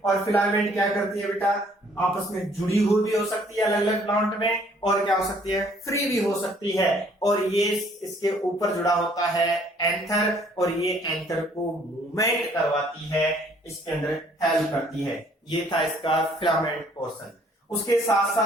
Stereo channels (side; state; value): both; normal; correlation 0.61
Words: और फिलामेंट क्या करती है बेटा, आपस में जुड़ी हुई भी हो सकती है अलग अलग प्लांट में, और क्या हो सकती है, फ्री भी हो सकती है। और ये इसके ऊपर जुड़ा होता है एंथर, और ये एंथर को मूवमेंट करवाती है, इसके अंदर हेल्प करती है। ये था इसका फिलामेंट पोर्शन। उसके साथ